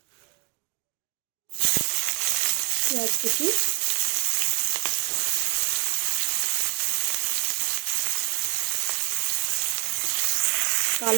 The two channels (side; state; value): left; quieter; 24.3 dB